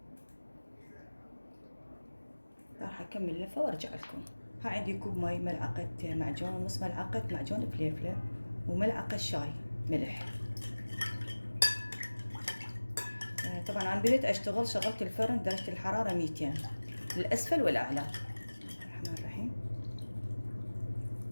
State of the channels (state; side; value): inverted; both; correlation -1.00